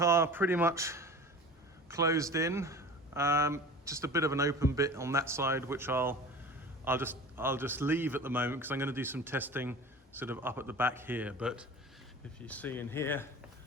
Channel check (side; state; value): both; normal; correlation 0.38